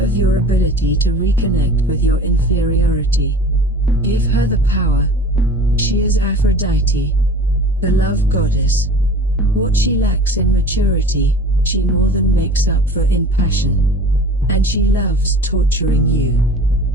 your ability to reconnect with your inferiority. Give her the power. She is Aphrodite, the love goddess. What she lacks in maturity, she more than makes up for in passion. And she loves torturing you.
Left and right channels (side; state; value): both; normal; correlation 0.41